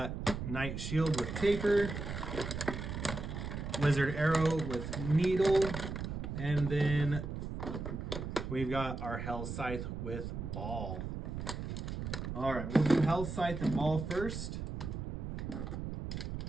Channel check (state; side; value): noise; right; rumble, 5 dB below the sound